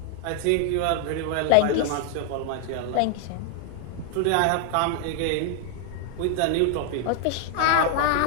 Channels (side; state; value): both; different; correlation 0.00